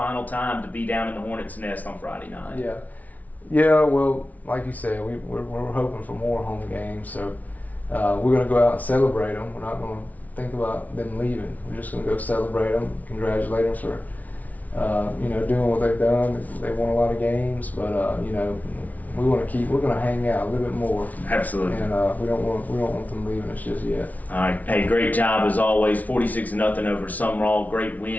time to be down in the Hornets' nest on Friday night. Yeah. Well, like you said, we're hoping for more home games, so. We're going to go out and celebrate them. We're not going to think about them leaving. We're just going to go celebrate them, congratulate them for, doing what they've done. They won a lot of games, but we're going to hang out a little bit more. Absolutely. And we don't want them leaving us just yet. All right. Hey, great job as always. 46-0 over Summerall. Great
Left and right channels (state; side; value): late; right; 0.074 ms